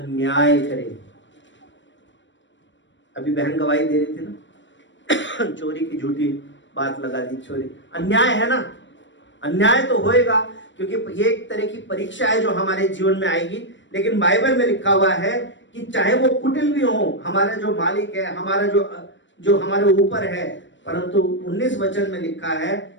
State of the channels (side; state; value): right; late; 0.54 ms